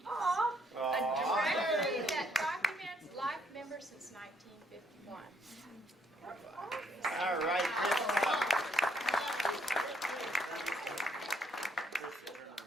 Aww. A directory that documents life members since 1951. All right,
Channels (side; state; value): both; normal; correlation 0.70